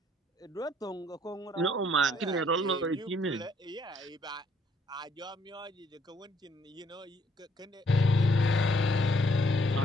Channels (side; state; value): both; normal; correlation 0.66